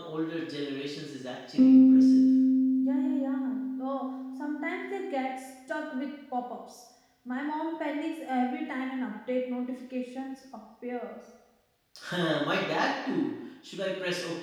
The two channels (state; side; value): identical; both; correlation 1.00